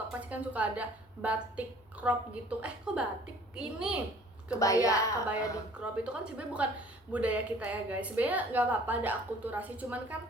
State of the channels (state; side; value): normal; both; correlation 0.53